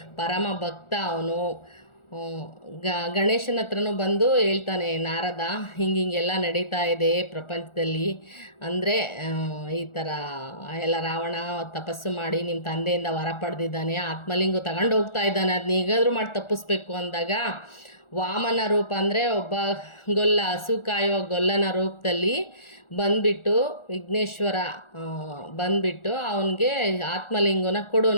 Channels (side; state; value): right; late; 1.4 ms